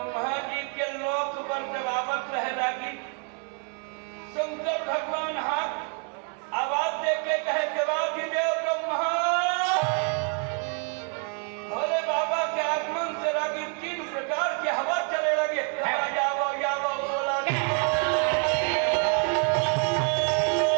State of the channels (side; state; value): left; quieter; 38.8 dB